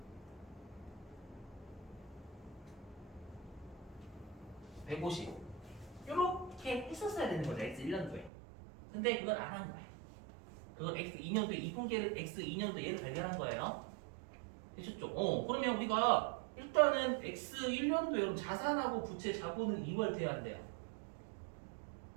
150 이렇게 했었어야 되는 거죠. X1년도에. 근데 그걸 안 한 거야. 그걸 X2년도에 2분기를 X2년도에 얘를 발견한 거예요. 되셨죠? 그러면 우리가 일단은 X1년도에 여러분 자산하고 부채 자본은 2월 돼야 한대요.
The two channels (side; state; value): left; drops out; at 8.3 s